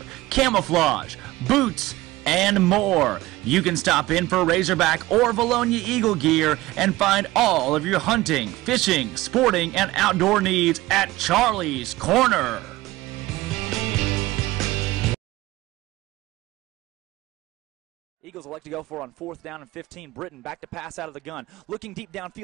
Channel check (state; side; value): quieter; left; 18.3 dB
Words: camouflage, boots, and more. You can stop in for Razorback or Vilonia Eagle gear and find all of your hunting, fishing, sporting, and outdoor needs at Charlie's Corner. Eagles elect to go for on 4th down and 15. Britton back to pass out of the gun. Looking deep